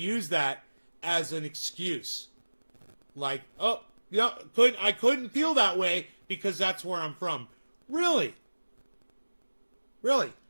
that as an excuse. Like, oh, yeah, I couldn't feel that way because that's where I'm from. Really? Really?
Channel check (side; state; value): both; inverted; correlation -1.00